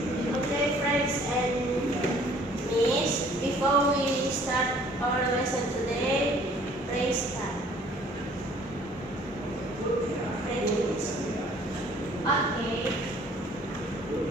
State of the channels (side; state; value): both; normal; correlation 0.56